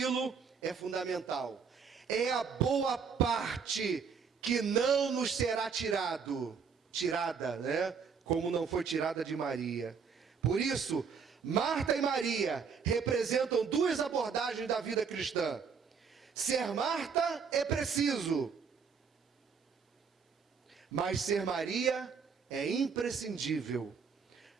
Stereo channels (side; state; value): left; quieter; 6.1 dB